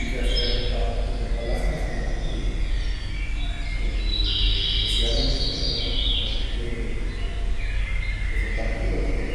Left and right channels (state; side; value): identical; both; correlation 1.00